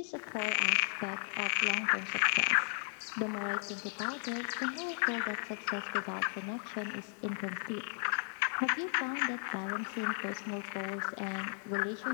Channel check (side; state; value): right; silent; 54 dB below the other